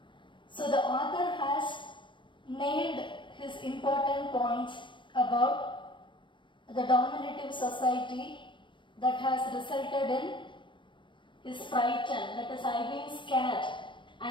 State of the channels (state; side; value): late; right; 0.23 ms